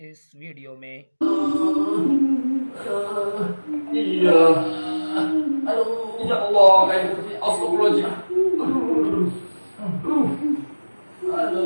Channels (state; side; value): inverted; both; correlation -1.00